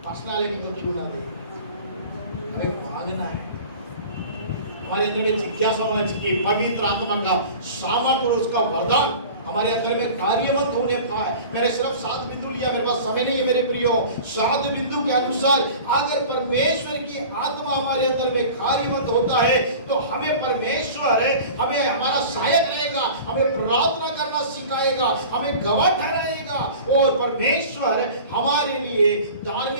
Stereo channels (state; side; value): inverted; both; correlation -0.40